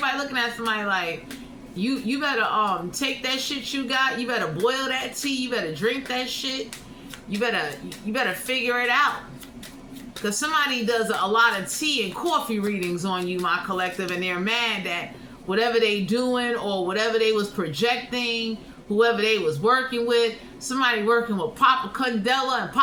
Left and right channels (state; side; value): identical; both; correlation 1.00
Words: looking at somebody like, you better take that shit you got, you better boil that tea, you better drink that shit, you better figure it out. Because somebody does a lot of tea and coffee readings on you, my collective, and they're mad that whatever they doing or whatever they was projecting, whoever they was working with, somebody working with Papa Candela, and